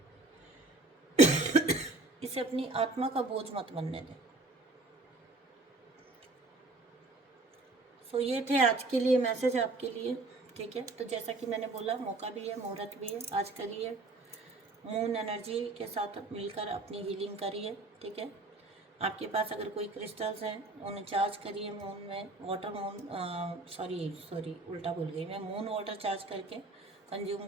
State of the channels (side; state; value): left; quieter; 3.1 dB